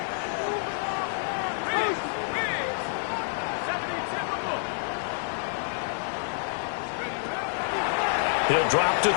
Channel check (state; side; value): silent; right; digital silence